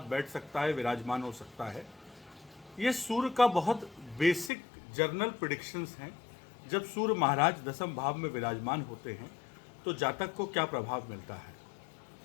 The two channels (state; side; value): drops out; right; at 4.5 s